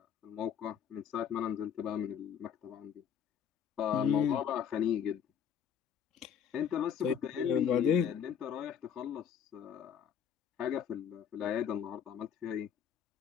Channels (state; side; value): quieter; right; 8.1 dB